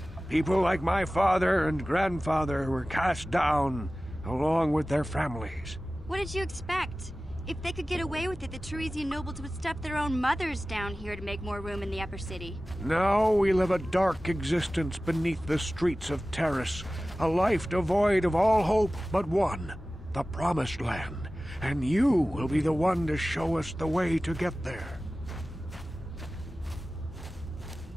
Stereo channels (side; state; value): both; normal; correlation 0.96